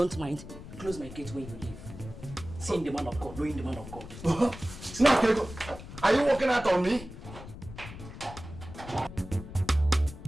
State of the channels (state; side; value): noise; left; rumble, 13 dB below the sound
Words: mind, close my gate when you leave. Seeing the man of God, knowing the man of God. Now, are you walking out on me?